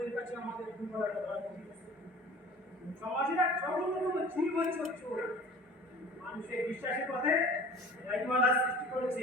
কাছে আমাদের দুর্বলতা ধরা পড়েছে। সমাজের এক জঘন্যতম জীবনচর চোর মানুষের বিশ্বাসের পথে রাইমালা সৃষ্টি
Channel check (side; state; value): both; normal; correlation 0.44